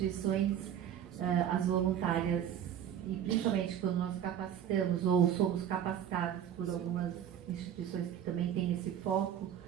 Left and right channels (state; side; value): quieter; left; 9.7 dB